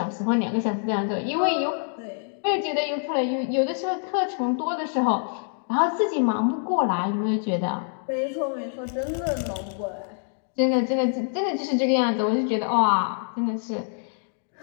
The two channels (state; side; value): silent; right; 61 dB below the other